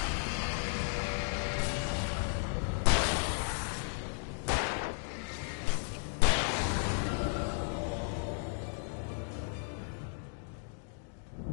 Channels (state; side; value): silent; right; 55 dB below the other